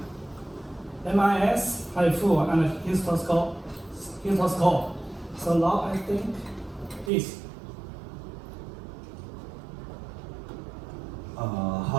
MIS, HIFU, and histoscope. So now I think this.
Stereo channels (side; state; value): left; drops out; at 7.1 s